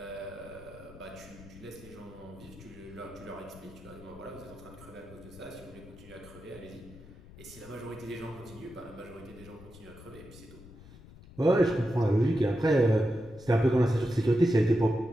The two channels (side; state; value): left; noise; rumble, 19 dB below the sound